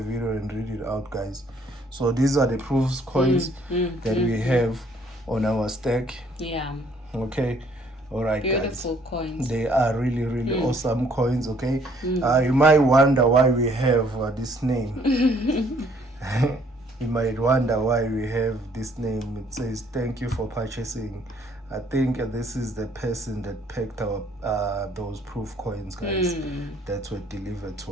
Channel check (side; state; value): both; normal; correlation 0.62